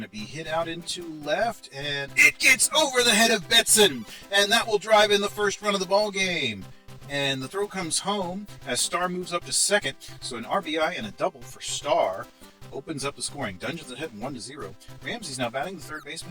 to be hit out into left, and it gets over the head of Betson, and that will drive in the first run of the ball game. And the throw comes home as Starr moves up to second, so an RBI and a double for Starr opens up the scoring. Dungeons ahead 1-0. Ramsey's now batting, the third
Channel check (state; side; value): identical; both; correlation 1.00